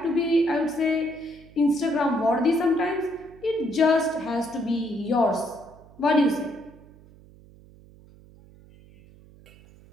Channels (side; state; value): right; noise; hum, 24 dB below the sound